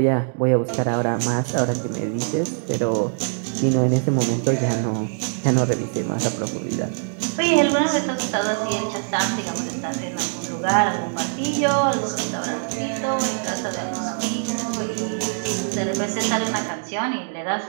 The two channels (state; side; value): silent; left; digital silence